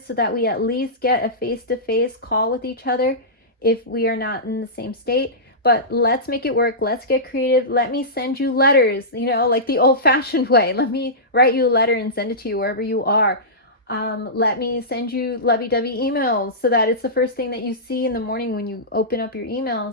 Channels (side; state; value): both; normal; correlation -0.17